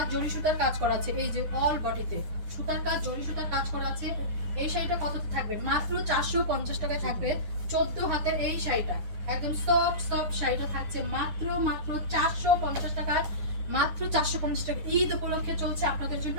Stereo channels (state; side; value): late; left; 9.8 ms